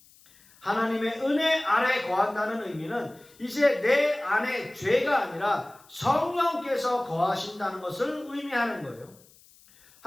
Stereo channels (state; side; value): noise; left; hiss, 27 dB below the sound